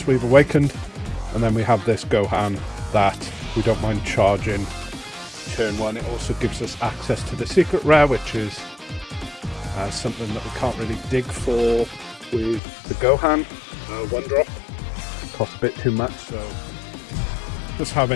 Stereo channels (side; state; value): right; drops out; at 12.6 s